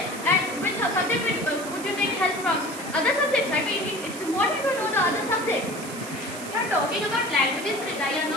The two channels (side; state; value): right; noise; hiss, 12 dB below the sound